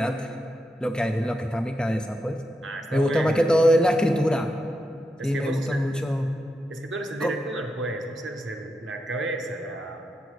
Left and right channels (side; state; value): both; normal; correlation 0.85